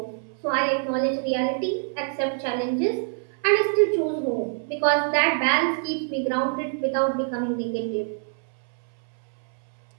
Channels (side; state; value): left; silent; 61 dB below the other